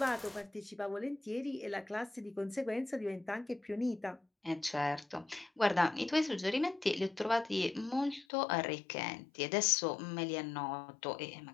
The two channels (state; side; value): drops out; right; at 8.2 s